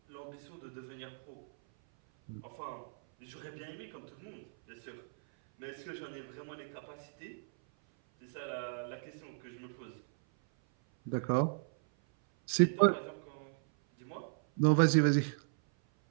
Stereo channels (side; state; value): left; silent; 54 dB below the other